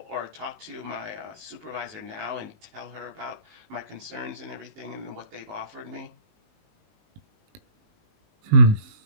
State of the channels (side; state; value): left; late; 19 ms